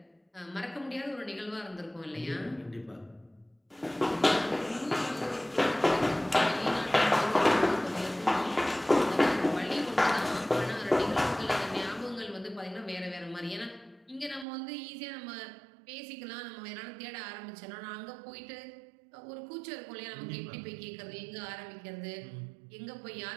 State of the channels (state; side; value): drops out; left; at 14.5 s